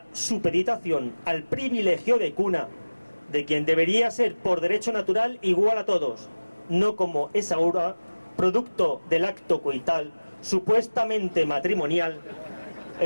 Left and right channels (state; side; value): inverted; both; correlation -1.00